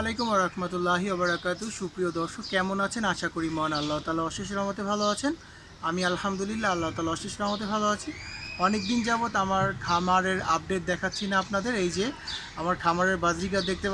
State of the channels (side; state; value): both; identical; correlation 1.00